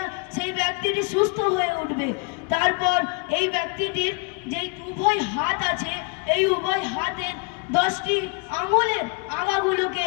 সেই ব্যক্তিটি সুস্থ হয়ে উঠবে। তারপর এই ব্যক্তিটির যেই উভয় হাত আছে, এই উভয় হাতের 10টি আঙুলের আগাগুলোকে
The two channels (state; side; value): quieter; right; 31.9 dB